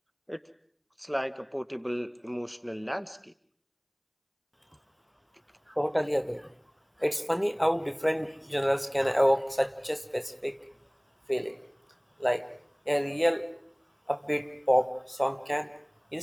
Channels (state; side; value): identical; both; correlation 1.00